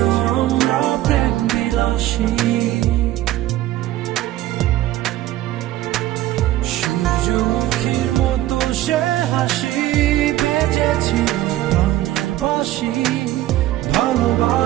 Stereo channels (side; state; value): left; quieter; 14.8 dB